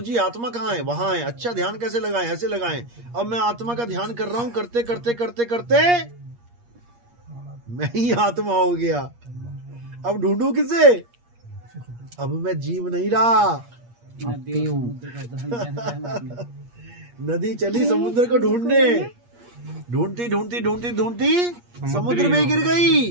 आत्मा कहाँ है? वहां है। अच्छा ध्यान कैसे लगाएं? ऐसे लगाएं। अब मैं आत्मा का ध्यान कर रहा हूं, करते करते करते करते मैं ही आत्मा हो गया। अब ढूंढू किसे? अब मैं जीव नहीं रहा। नदी चली समुद्र को ढूंढने, ढूंढती ढूंढती ढूंढती ढूंढती समुद्र में गिर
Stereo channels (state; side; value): late; left; 8.5 ms